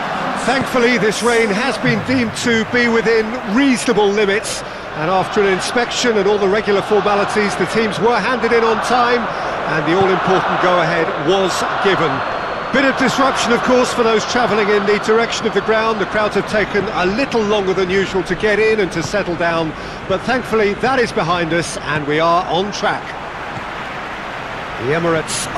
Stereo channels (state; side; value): identical; both; correlation 1.00